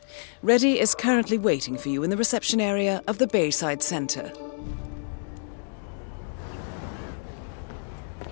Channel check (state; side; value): silent; right; 60 dB below the other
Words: Reddy is currently waiting for you in the reception area of the Bayside Center.